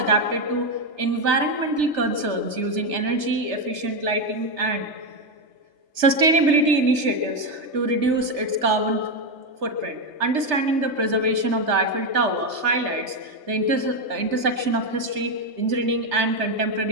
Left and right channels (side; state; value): left; late; 3.3 ms